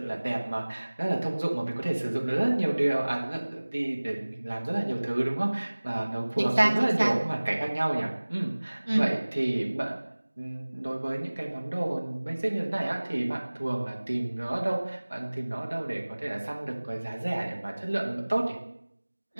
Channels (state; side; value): inverted; both; correlation -1.00